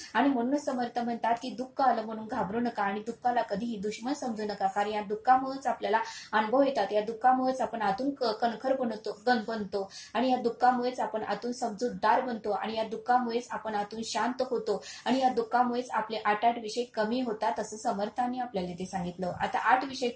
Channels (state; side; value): identical; both; correlation 1.00